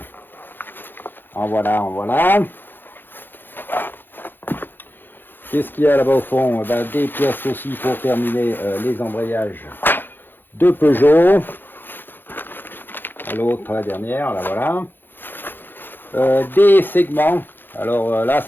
En voilà. Qu'est-ce qu'il y a là-bas au fond? Des pièces aussi pour terminer les embrayages de Peugeot. L'autre, la dernière, là voilà. Des segments. Alors là,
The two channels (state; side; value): late; right; 0.096 ms